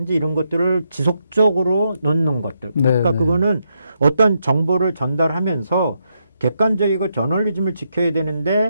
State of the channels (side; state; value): both; inverted; correlation -0.81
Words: 이런 것들을 지속적으로 넣는 것들. 그러니까 그거는 어떤 정보를 전달하면서 객관적이고 저널리즘을 지켜야